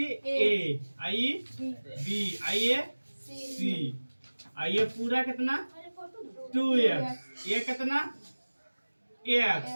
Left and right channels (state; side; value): inverted; both; correlation -1.00